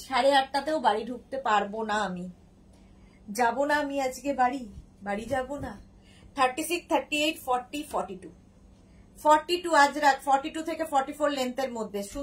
8:30টাতেও বাড়ি ঢুকতে পারবো না, আমি যাব না, আমি আজকে বাড়ি যাব না। 36, 38, 40, 42, 42 আজরাক, 42 থেকে 44 লেন্থের মধ্যে।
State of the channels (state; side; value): identical; both; correlation 1.00